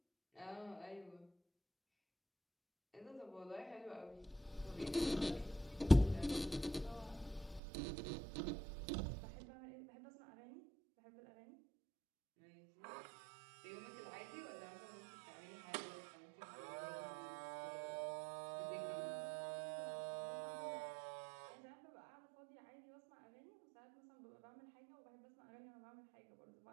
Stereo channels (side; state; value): left; drops out; at 7.6 s